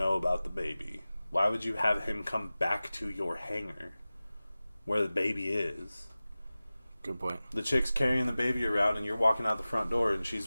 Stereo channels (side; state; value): both; inverted; correlation -0.97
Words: about the baby. Why would you have him come back to your hangar where the baby is? Good point. The chick's carrying the baby around and you're walking out the front door and she's